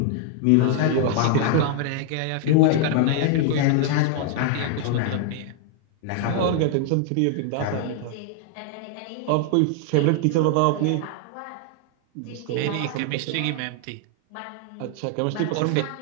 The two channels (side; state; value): both; different; correlation 0.00